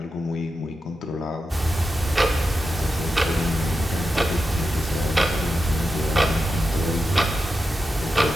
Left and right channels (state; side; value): normal; both; correlation 0.89